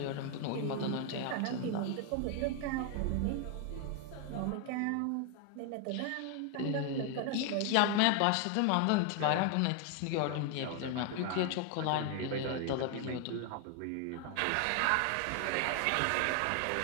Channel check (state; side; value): different; both; correlation 0.01